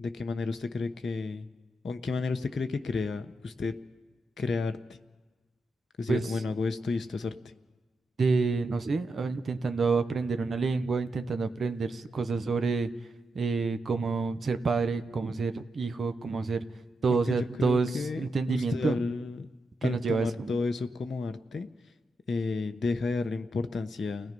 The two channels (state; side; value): normal; both; correlation 0.85